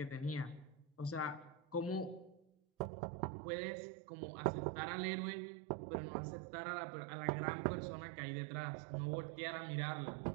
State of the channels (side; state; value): left; drops out; at 2.9 s